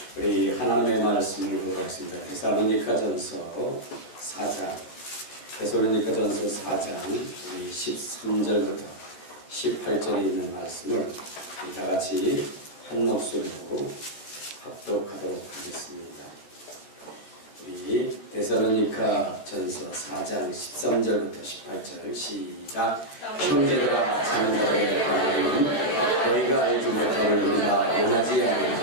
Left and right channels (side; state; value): right; late; 14 ms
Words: 우리 하나님의 말씀을 보도록 하겠습니다. 데살로니가전서 4장, 데살로니가전서 4장 13절부터 18절에 있는 말씀을 다 같이 한 목소리로 합독하도록 하겠습니다. 우리 데살로니가전서 4장 13절부터 18절 시작. 형제들아, 자는 자들의 관계는 너희가 알지 못함을 우리가 원하지